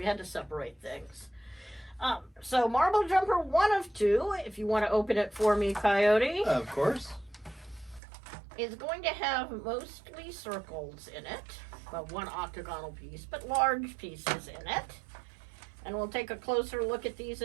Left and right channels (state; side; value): drops out; left; at 8.0 s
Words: had to separate things. So Marble Jumper 1 of 2, if you want to open it for me, Coyote. Of course. Is going to have mostly circles in it. Well, one octagonal piece, but large pieces in it. And we'll take a closer look at these